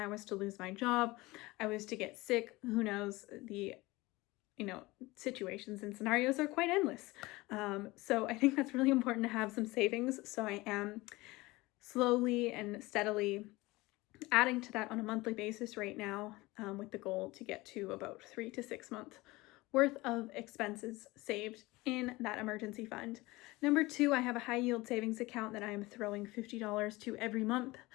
was to lose my job, I was to get sick, who knows, the situations and scenarios are quite endless. So I think that's really important to have some savings. So I am slowly and steadily adding to that on a monthly basis right now, with the goal to get to about 3 to 6 months worth of expenses saved in that emergency fund. Number 2, I have a high yield savings account that I am throwing $50 to every month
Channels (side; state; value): right; quieter; 21.1 dB